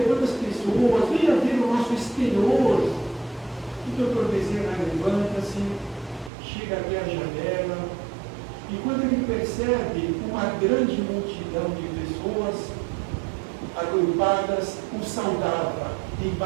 quantas pessoas, venha ver o nosso exterior. E o Dr. Bezerra levanta-se, chega até a janela, e quando ele percebe uma grande multidão de pessoas agrupadas, o saudava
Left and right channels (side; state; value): left; drops out; at 6.3 s